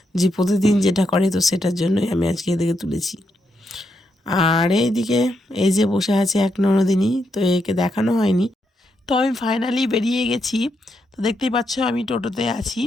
যে প্রতিদিন যেটা করে, তো সেটার জন্যই আমি আজকে এদেরকে তুলেছি। আর এইদিকে এই যে বসে আছে এক ননদিনী, তো একে দেখানো হয়নি। তো আমি ফাইনালি বেরিয়ে গেছি। তো দেখতেই পাচ্ছ আমি টোটোতে আছি।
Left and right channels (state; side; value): normal; both; correlation 0.81